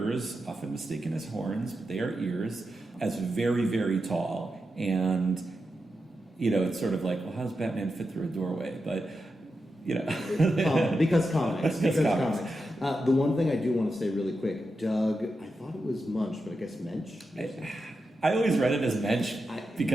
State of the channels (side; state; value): both; normal; correlation 0.88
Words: often mistaken as horns, but they are ears, as very, very tall. And, you know, it's sort of like, well, how does Batman fit through a doorway? But, you know. Because comics. The one thing I do want to say really quick, Doug, I thought it was Moench, but I guess Moench? I always read it as Moench